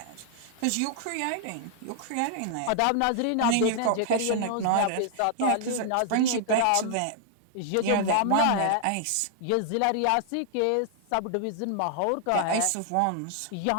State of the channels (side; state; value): both; different; correlation -0.01